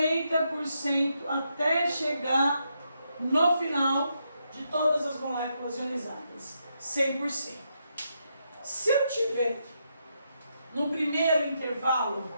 até chegar no final de todas as moléculas ionizadas, 100%. Se eu tiver no primeiro intervalo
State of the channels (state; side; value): inverted; both; correlation -0.81